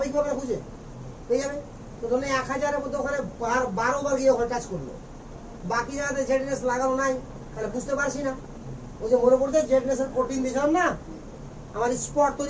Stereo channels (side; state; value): both; identical; correlation 1.00